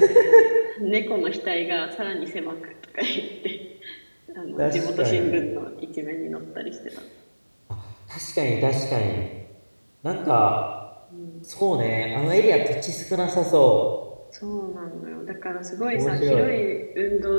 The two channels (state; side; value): inverted; both; correlation -1.00